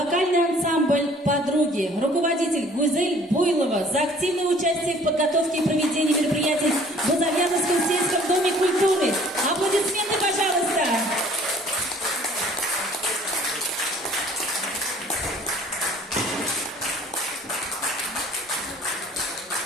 ансамбль «Подруги», руководитель Гузель Буйлова за активное участие в подготовке и проведении мероприятий в Бузовьяновском сельском доме культуры. Аплодисменты, пожалуйста!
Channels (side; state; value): both; normal; correlation 0.55